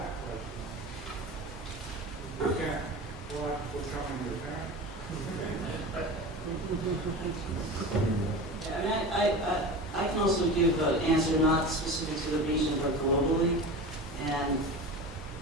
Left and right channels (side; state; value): both; normal; correlation 0.30